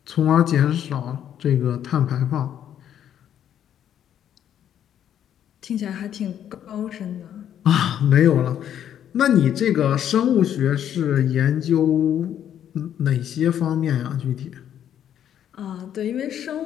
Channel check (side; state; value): right; quieter; 10.0 dB